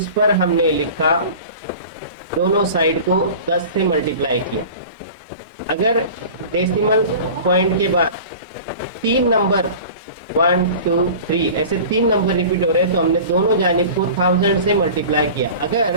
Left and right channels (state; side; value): inverted; both; correlation -0.38